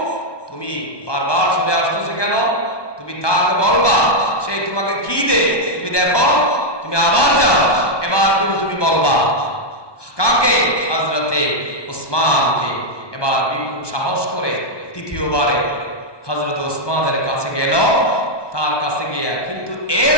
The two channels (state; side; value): late; right; 1.2 ms